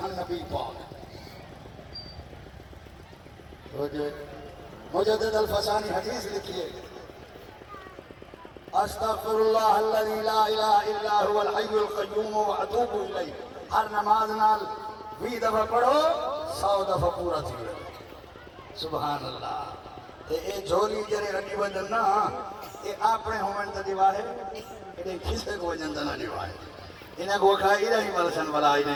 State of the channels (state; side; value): identical; both; correlation 1.00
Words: نبی پاک مجدد الفسانی حدیث لکھیے استغفر اللہ الذی لا الہ الا هو الحی القیوم واتوب الیہ ہر نماز نال 20 دفعہ پڑھو 100 دفعہ پورا تھی سبحان اللہ تے اے جھولی جڑے رڈی وجن نا اے اپنے ہومن تے دیواہے اے کسے کو وجن تے نہ دیواہے انہاں کو کھائی رہی ملسن ولا